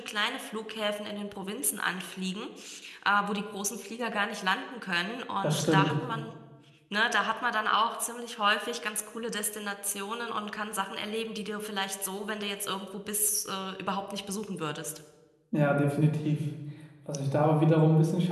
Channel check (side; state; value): both; identical; correlation 1.00